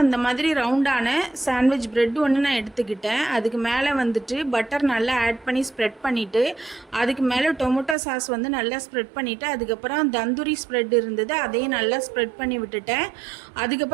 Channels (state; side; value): drops out; left; at 8.0 s